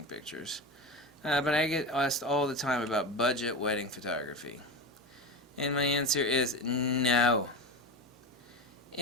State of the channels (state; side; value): normal; both; correlation 0.22